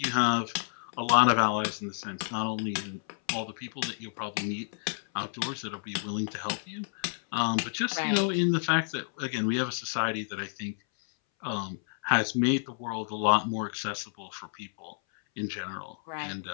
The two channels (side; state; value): right; silent; 58 dB below the other